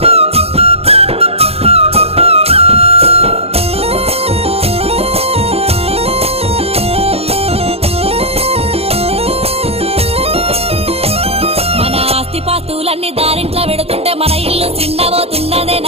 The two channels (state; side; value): late; left; 0.29 ms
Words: పాస్తులన్నీ దారింట్లో పెడుతుంటే మన ఇల్లు చిన్నబోతున్నదే